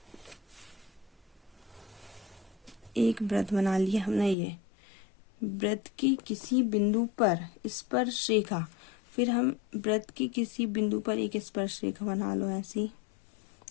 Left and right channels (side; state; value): right; drops out; at 4.4 s